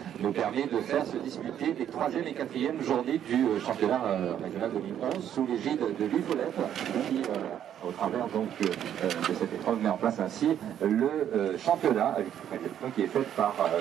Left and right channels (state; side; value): quieter; left; 10.1 dB